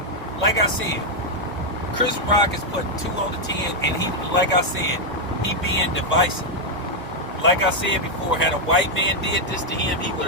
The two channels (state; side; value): normal; both; correlation 0.00